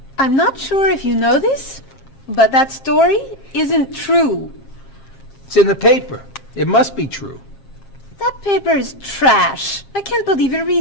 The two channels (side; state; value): right; late; 7.4 ms